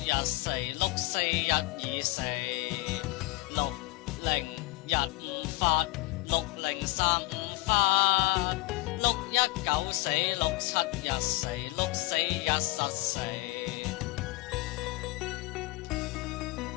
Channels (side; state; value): right; quieter; 20.6 dB